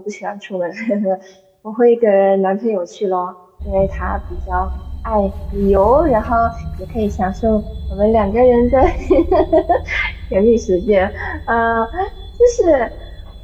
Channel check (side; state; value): both; identical; correlation 1.00